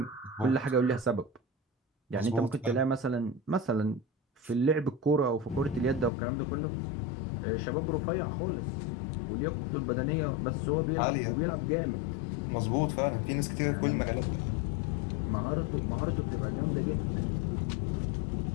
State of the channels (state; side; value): drops out; right; at 6.1 s